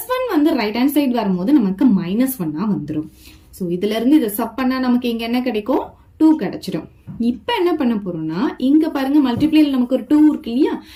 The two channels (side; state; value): both; identical; correlation 1.00